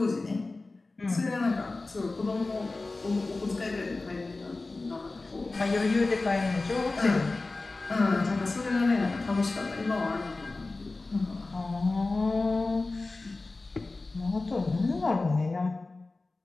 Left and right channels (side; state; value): right; quieter; 3.4 dB